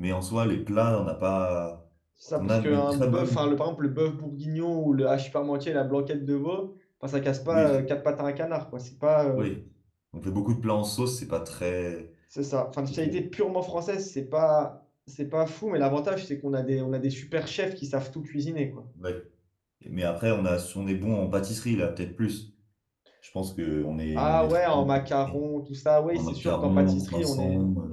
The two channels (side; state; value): both; identical; correlation 1.00